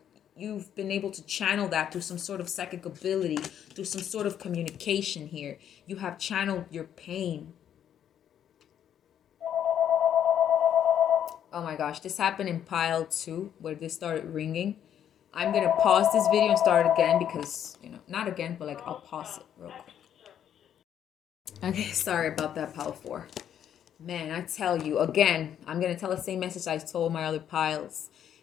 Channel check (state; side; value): quieter; right; 9.7 dB